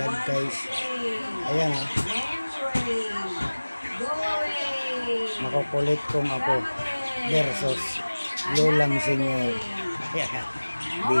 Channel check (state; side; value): inverted; both; correlation -1.00